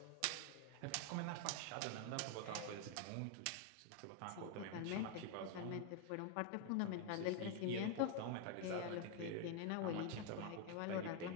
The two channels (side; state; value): both; different; correlation 0.00